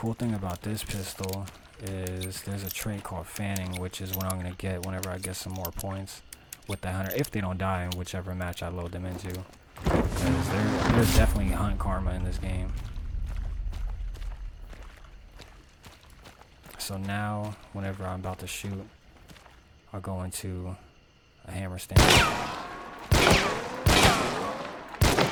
thing about this pistol is there's a trait called fanning, which is what I'm going to get whenever I get some more points with the hunter, if they don't die in whichever match I load them into. Because there's definitely hunt karma in this game. So now, whenever I'm about to shoot, I'll go into a hammer stand.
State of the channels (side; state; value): both; identical; correlation 1.00